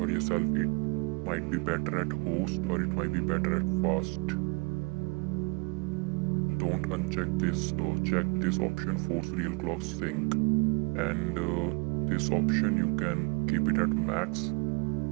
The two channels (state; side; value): quieter; left; 30.0 dB